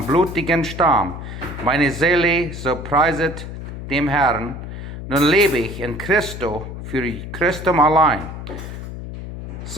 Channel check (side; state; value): left; noise; hum, 9 dB below the sound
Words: blutigen Stamm. Meine Seele, so preiset dem Herrn. Nun lebe ich in Christo, für Christum allein.